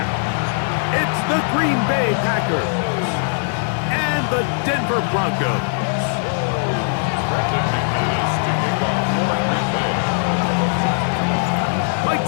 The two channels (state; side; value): silent; right; 60 dB below the other